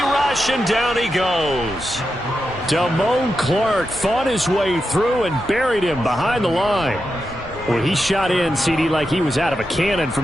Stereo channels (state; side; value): normal; both; correlation 0.88